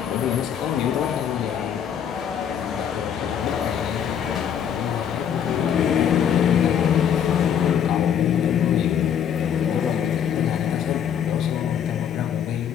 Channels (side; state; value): right; quieter; 8.7 dB